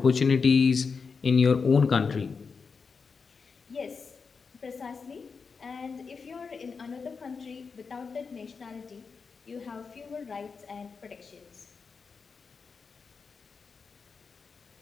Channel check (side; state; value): right; quieter; 5.2 dB